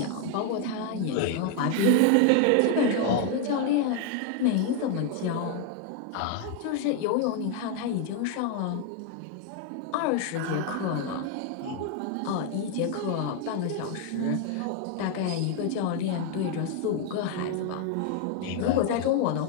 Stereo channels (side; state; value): both; different; correlation 0.01